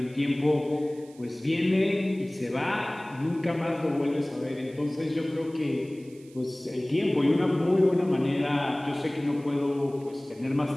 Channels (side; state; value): right; noise; hiss, 27 dB below the sound